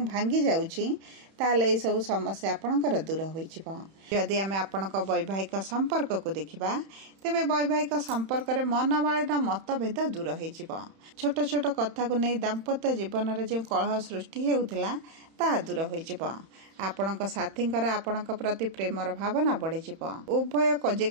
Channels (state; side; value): late; left; 31 ms